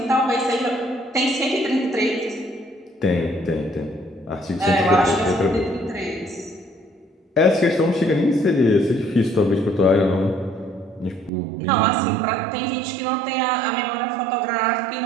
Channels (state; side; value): drops out; left; at 11.3 s